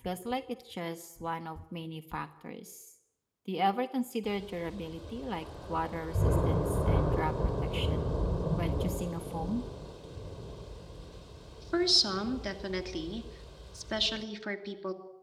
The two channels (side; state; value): both; identical; correlation 1.00